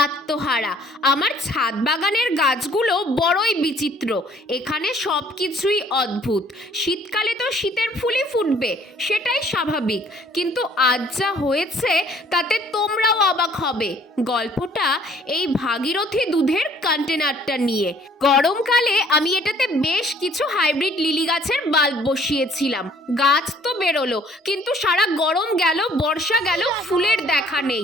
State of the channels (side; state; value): both; normal; correlation 0.59